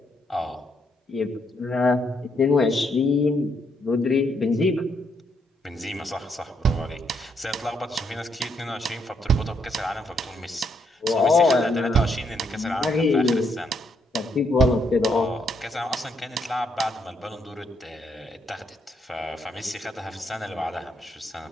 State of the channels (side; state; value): both; normal; correlation 0.75